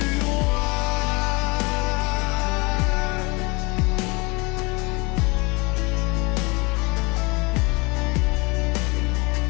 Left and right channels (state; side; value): quieter; right; 26.9 dB